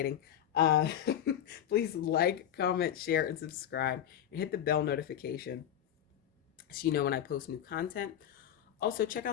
uh Please like, comment, share, and subscribe, and hit the bell notification so you know when I post new content. Also, check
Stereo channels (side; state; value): right; quieter; 10.2 dB